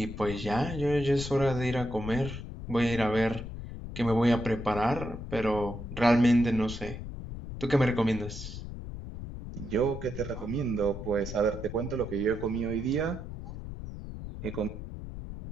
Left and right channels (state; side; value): noise; left; rumble, 9 dB below the sound